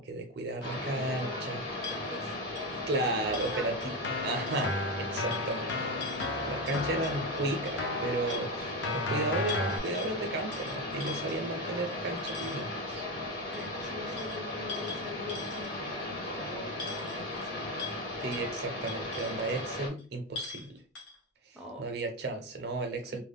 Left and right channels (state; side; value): normal; both; correlation 0.14